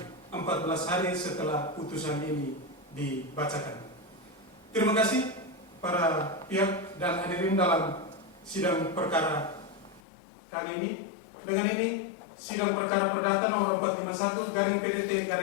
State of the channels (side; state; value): right; drops out; at 10.0 s